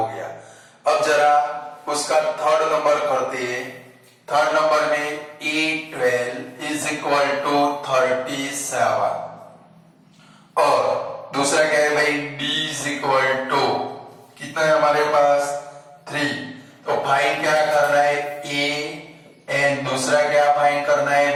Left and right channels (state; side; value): identical; both; correlation 1.00